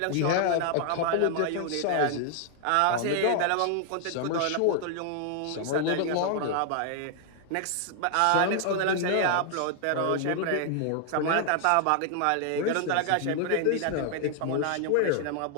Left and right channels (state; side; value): different; both; correlation 0.00